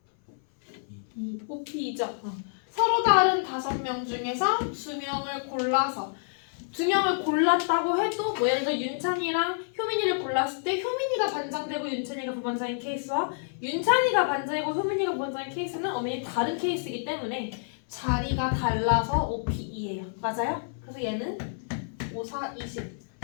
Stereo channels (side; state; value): right; silent; 59 dB below the other